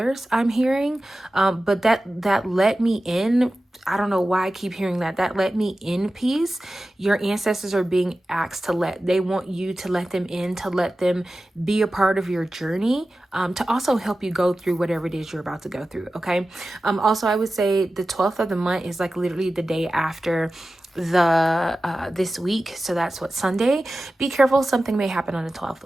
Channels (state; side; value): normal; both; correlation 0.95